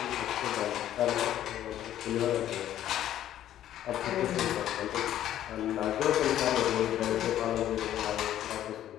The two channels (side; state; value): right; quieter; 11.9 dB